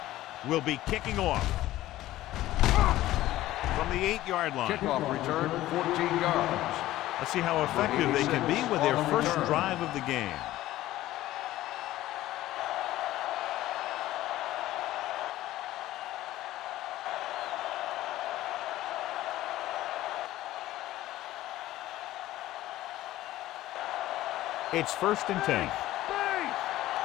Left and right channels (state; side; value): quieter; right; 15.3 dB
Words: will be kicking off from the 8-yard line. Kickoff return, 14 yards. Let's see how effective they can be with their first drive of the game. It's 1st and 10.